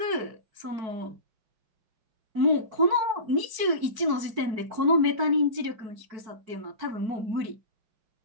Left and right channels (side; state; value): left; late; 4.6 ms